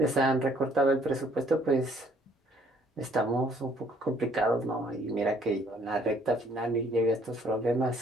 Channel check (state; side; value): normal; both; correlation 0.62